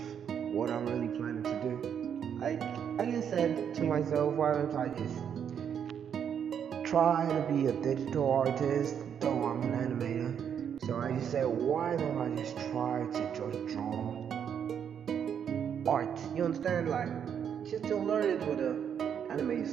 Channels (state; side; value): quieter; left; 8.2 dB